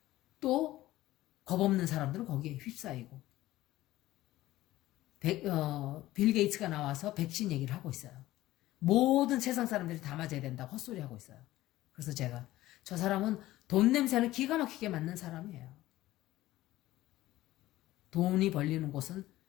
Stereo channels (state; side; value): quieter; right; 16.1 dB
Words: 또 겁없는 사람들은 거기에 휩싸이고 빌 게이츠가 나와서 백신 얘기를 하고 있어요. 모든 세상 사람들이 다 맞아야 된다고 헛소리하고 있어요. 그래서 제가 저 사람은 돈 냄새는 기가 막히게 맡는 사람이에요. 돈이 벌리는 곳은